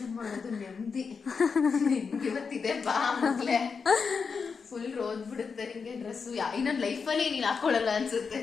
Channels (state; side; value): quieter; right; 5.4 dB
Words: ಮಾಡೋದು. ನೆಮ್ಮದಿ ಇವತ್ತಿದೆ ಬಾ ಮೊದಲೇ ಫುಲ್ ರೋದ್ ಬಿಡುತ್ತೆ ನಿಂಗೆ ಡ್ರೆಸ್ಸು. ಇನ್ನೊಂದು ಲೈಫಲ್ಲಿ ನೀನು ಹಾಕೊಳ್ಳಲ್ಲ ಅನ್ಸುತ್ತೆ.